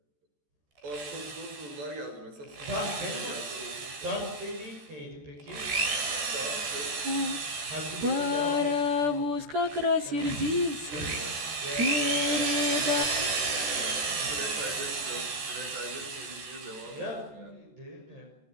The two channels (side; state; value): left; late; 14 ms